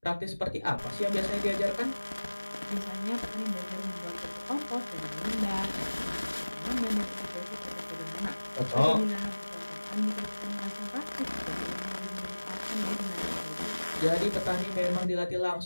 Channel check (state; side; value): inverted; both; correlation -1.00